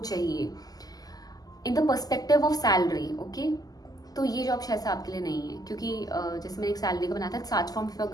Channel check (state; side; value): late; right; 0.18 ms